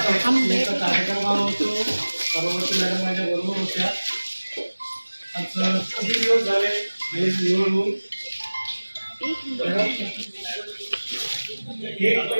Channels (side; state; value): both; inverted; correlation -1.00